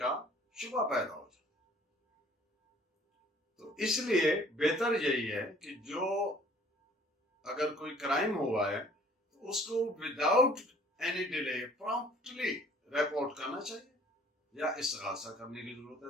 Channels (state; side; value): normal; both; correlation 0.55